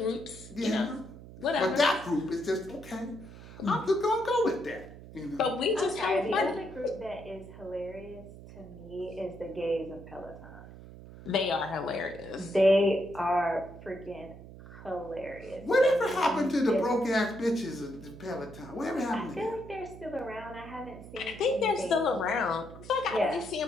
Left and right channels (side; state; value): right; noise; hum, 16 dB below the sound